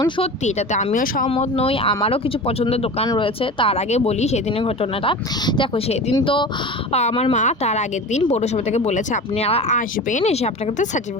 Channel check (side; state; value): both; normal; correlation 0.32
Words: সত্যি এটাতে আমিও সহমত নই, আমারও কিছু পছন্দের দোকান রয়েছে। তার আগে বলি সেদিনের ঘটনাটা। দেখো সেদিন তো আমার মা তার আগের দিন পৌরসভা থেকে বলেছে আপনারা আসবেন, এসে আপনাকে তো